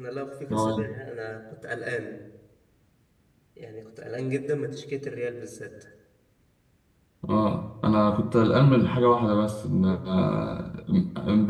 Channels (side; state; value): both; identical; correlation 1.00